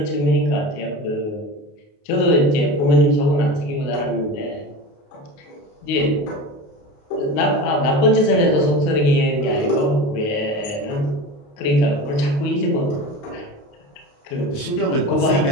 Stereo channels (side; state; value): right; late; 28 ms